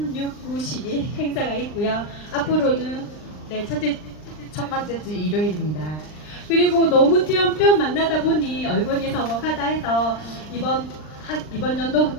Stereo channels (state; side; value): late; right; 39 ms